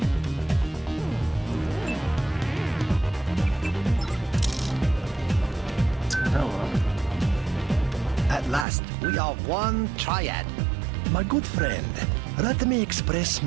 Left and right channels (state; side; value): drops out; left; at 8.7 s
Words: We are one triad. My good friend, let me express